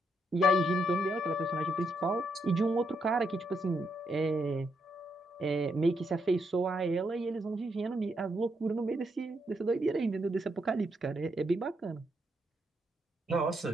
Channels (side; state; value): both; normal; correlation 0.78